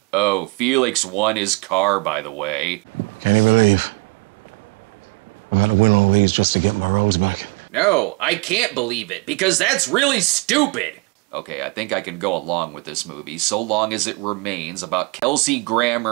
Oh, Felix won his car, by the way. Can't you believe I've had to win all these just to get my rose back? No, I can't believe it, because that's really stupid. Okay, I think I can go along with this movie, so long as it remains about Kelsey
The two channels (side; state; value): left; quieter; 28.1 dB